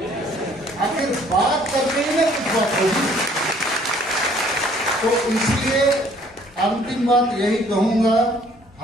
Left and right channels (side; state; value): both; normal; correlation 0.59